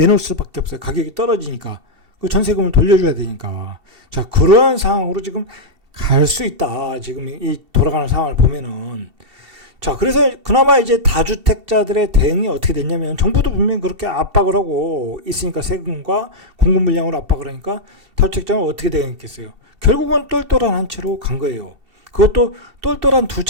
수밖에 없어요. 가격이 떨어지니까. 그 전세금을 돌려줘야 되니까. 자, 그러한 상황으로 지금 갈 수 있다. 지금 이 돌아가는 상황을 보면은. 자, 그래서 그나마 이제 다주택자들의 대응이 어떻게 됐냐면, 정부도 분명히 그렇게 압박을 하고 있으니까, 세금과 공급 물량으로 압박을 하니까 다주택자는 어떻게 대응했겠어요? 결국은 똘똘한 한 채로 간 거예요. 그것도 똘똘한 두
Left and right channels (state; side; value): late; left; 2.6 ms